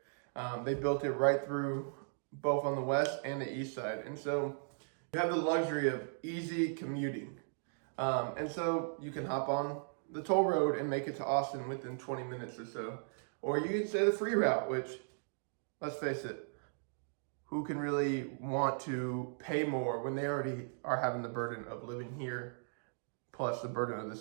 They built it right through both on the west and the east side. And so you have the luxury of easy commuting. And so you can hop on the toll road and make it to Austin within 20 minutes or so. Or you can say the free route, which, let's face it, who can really want to pay more when they already are having the burden of living here, plus the burden of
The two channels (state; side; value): silent; left; digital silence